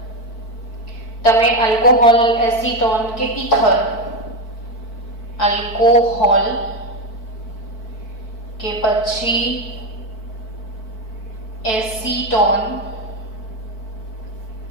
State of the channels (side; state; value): right; late; 4.5 ms